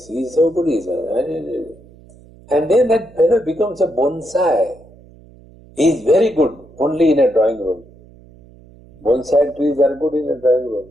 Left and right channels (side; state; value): right; noise; hum, 24 dB below the sound